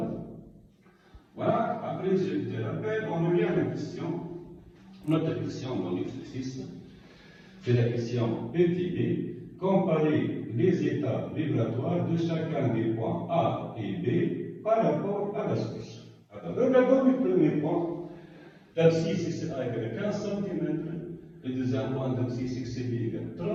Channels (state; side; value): identical; both; correlation 1.00